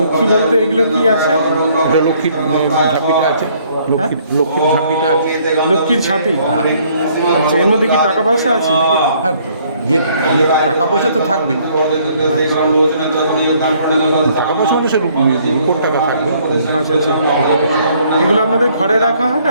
লক্ষ্মী বলতে এগুলো কি আছে? এটা লক্ষ্মীর ঝাঁপিটা আছে, লক্ষ্মীর ঝাঁপিটা আছে। লক্ষ্মীর ঝাঁপি? আচ্ছা, এর মধ্যে কি টাকা পয়সা আছে নাকি? হ্যাঁ, টাকা পয়সা তো থাকবেই। টাকা পয়সা মানে সে রূপোর টাকা থাকবে। আচ্ছা, আচ্ছা, এগুলো আপনাদের ঘরে রাখা হয়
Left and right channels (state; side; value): inverted; both; correlation -0.63